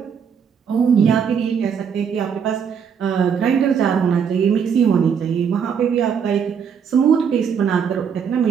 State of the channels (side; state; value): left; quieter; 7.1 dB